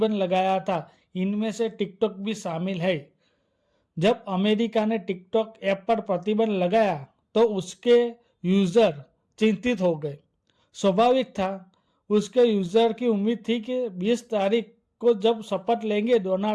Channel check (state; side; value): identical; both; correlation 1.00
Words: लगाया था, इनमें से टिकटॉक भी शामिल है। जब अमेरिका ने टिकटॉक ऐप पर प्रतिबंध लगाया तो उसके यूजर चिंतित हो गए। स्वाभाविक था, उसके यूजर की उम्मीद थी कि 20 तारीख को जब शपथ लेंगे